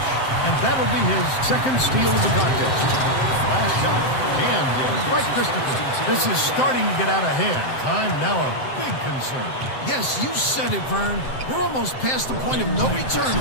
And that'll be his second steal of the contest. Last shot jammed in by Christopher. This is starting to get out of hand. Time now a big concern. Yes, you said it, Vern. We're almost past the point of no return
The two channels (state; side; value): late; right; 7.7 ms